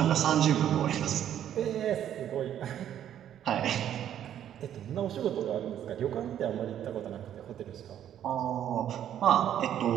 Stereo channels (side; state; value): left; quieter; 10.5 dB